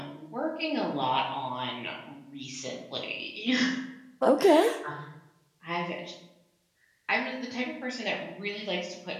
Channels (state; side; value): identical; both; correlation 1.00